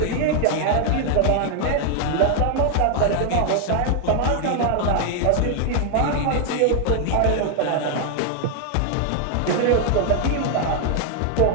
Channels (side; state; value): both; different; correlation 0.00